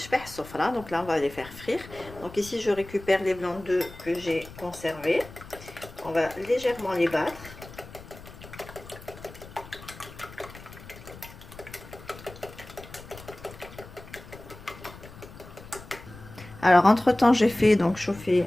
sofra. Donc là on va les faire frire. Donc ici je récupère les blancs d'œufs que j'ai conservés. On va légèrement les battre. Alors entre temps j'ai fait donc chauffer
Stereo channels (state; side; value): noise; left; rumble, 17 dB below the sound